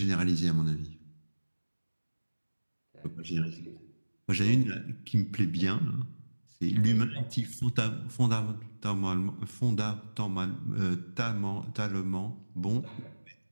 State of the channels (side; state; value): both; inverted; correlation -1.00